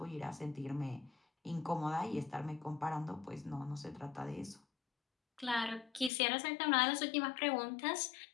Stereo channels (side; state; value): right; drops out; at 6.1 s